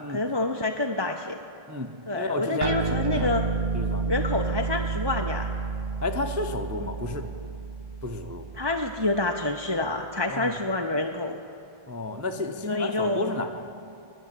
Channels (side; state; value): left; late; 1.2 ms